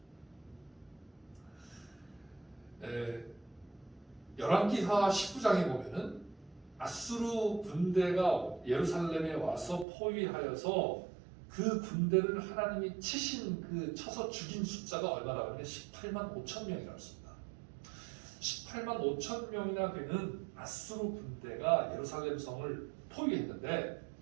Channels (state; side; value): drops out; left; at 9.9 s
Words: 열왕기하 19장에 보면은 아수르 군대가 예루살렘에 와서 포위하여서 그 군대를 하나님이 쳐서 죽인 숫자가 얼마나 하면 18만 5천 명이라고 했습니다. 18만 5천 명이나 되는 아수르 군대가 예루살렘 성을 포위했는데